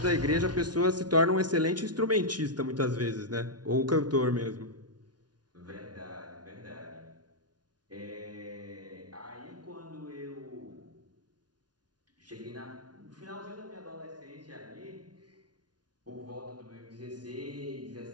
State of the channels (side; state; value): left; late; 0.69 ms